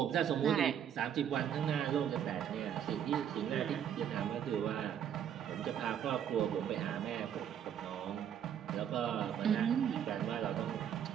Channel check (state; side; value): quieter; left; 9.1 dB